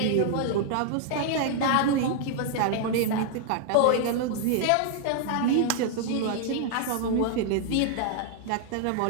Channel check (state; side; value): different; both; correlation -0.01